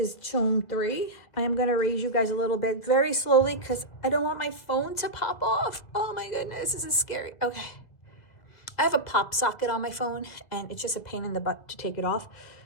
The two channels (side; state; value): right; late; 1.9 ms